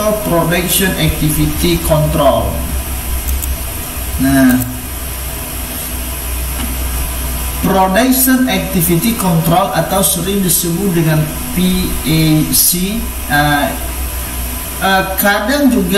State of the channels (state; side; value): identical; both; correlation 1.00